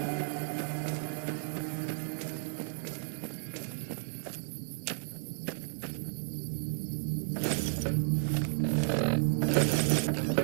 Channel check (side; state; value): left; silent; 56 dB below the other